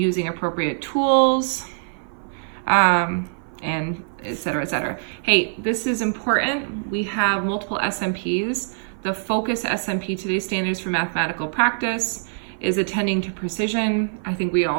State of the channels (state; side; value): silent; left; 55 dB below the other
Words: appropriate tools, and et cetera, et cetera. Hey, this is important. We have multiple SMPs. The focus SMP, today's standards for mathematical practice, is attending to precision. I think we